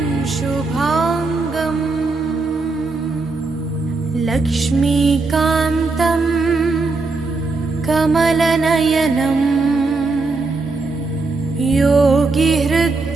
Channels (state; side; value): quieter; left; 3.6 dB